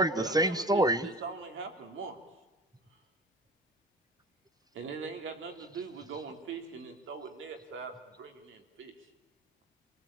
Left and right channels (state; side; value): normal; both; correlation 0.38